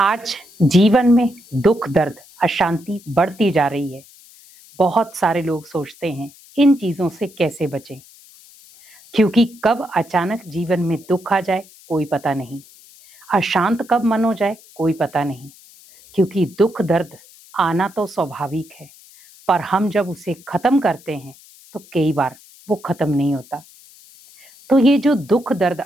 जीवन में दुख दर्द अशांति बढ़ती जा रही है। बहुत सारे लोग सोचते हैं इन चीजों से कैसे बचें, क्योंकि कब अचानक जीवन में दुख आ जाए कोई पता नहीं, अशांत कब मन हो जाए कोई पता नहीं। क्योंकि दुख दर्द आना तो स्वाभाविक है, पर हम जब उसे खत्म करते हैं तो कई बार वो खत्म नहीं होता। तो ये जो दुख दर्द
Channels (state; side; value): noise; left; hiss, 24 dB below the sound